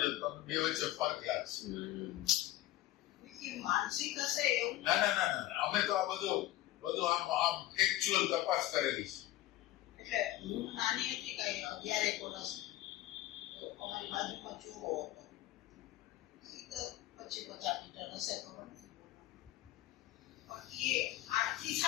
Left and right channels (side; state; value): right; quieter; 15.2 dB